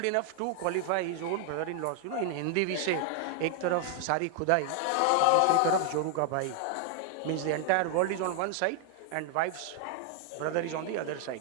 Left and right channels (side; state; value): both; different; correlation 0.00